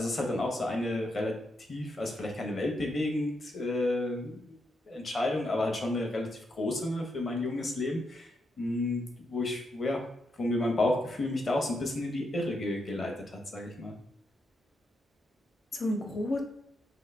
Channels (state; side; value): normal; both; correlation 0.82